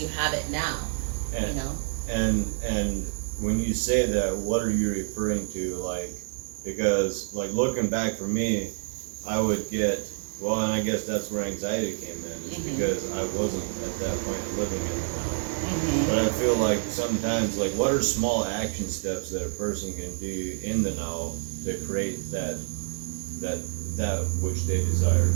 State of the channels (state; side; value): silent; left; digital silence